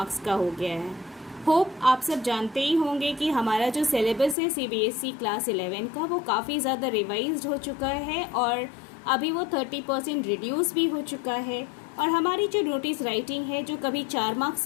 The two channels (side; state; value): right; drops out; at 4.4 s